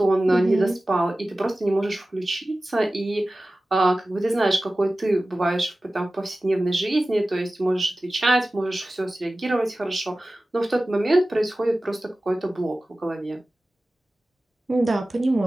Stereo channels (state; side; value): normal; both; correlation 0.96